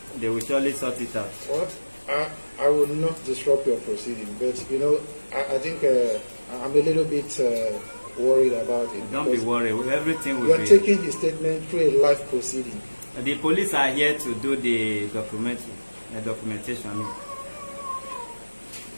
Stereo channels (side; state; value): both; inverted; correlation -1.00